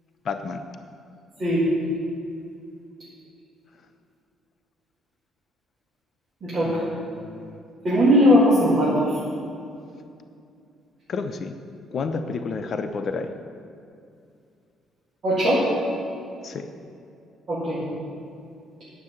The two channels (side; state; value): both; normal; correlation 0.60